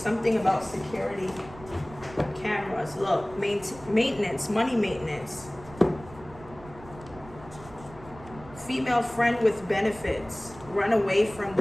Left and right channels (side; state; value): right; noise; rumble, 19 dB below the sound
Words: about security cameras. Look, maintenance, money maintenance. Female friend with benefits. Run away from